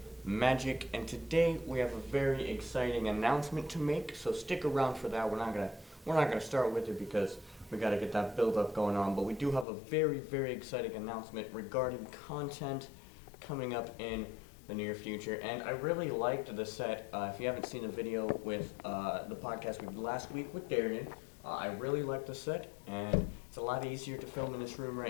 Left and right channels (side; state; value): right; drops out; at 9.7 s